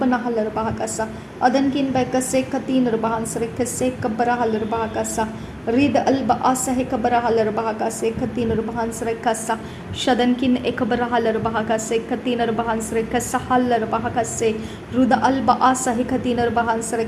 rubahakasa, adankin behkase katin rubahan sarekase kabarahal rubahakasa, Rid alba asa hekabarahal bahakase, katin rubahan sarekasa, shadankin ekabarahal bahakase, katin rubahan sarekasa halar bahakase, ruda alba asa hekatin rubahan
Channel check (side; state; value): both; identical; correlation 1.00